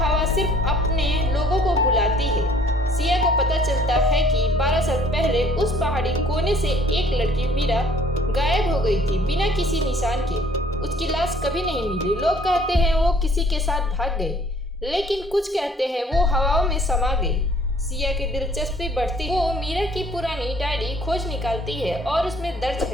सिर्फ अपने लोगों को बुलाती है। सिया को पता चलता है कि 12 साल पहले उस पहाड़ी कोने से एक लड़की मीरा गायब हो गई थी बिना किसी निशान के। उसकी लाश कभी नहीं मिली। लोग कहते हैं वो किसी के साथ भाग गई, लेकिन कुछ कहते हैं वो हवाओं में समा गई। सिया की दिलचस्पी बढ़ती, वो मीरा की पुरानी डायरी खोज निकालती है और उसमें दर्ज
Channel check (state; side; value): normal; both; correlation 0.58